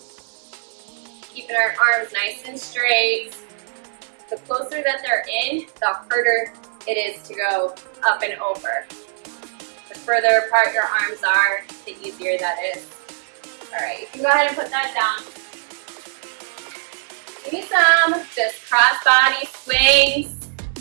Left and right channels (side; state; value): left; silent; 64 dB below the other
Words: Keeping our arms nice and straight. The closer that they're in, the harder it is to go up and over. The further apart your arms are, the easier that is. All right, you can go ahead and put that down. Give me some just cross body swings.